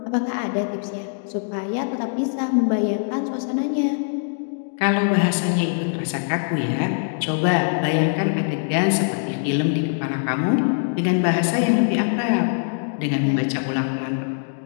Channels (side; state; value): right; silent; digital silence